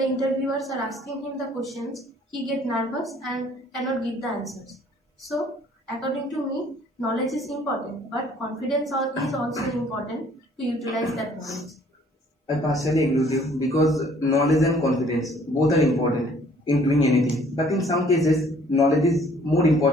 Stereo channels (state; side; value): normal; both; correlation 0.58